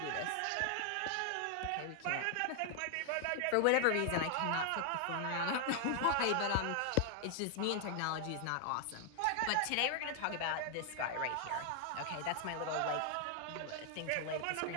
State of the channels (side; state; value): both; different; correlation 0.00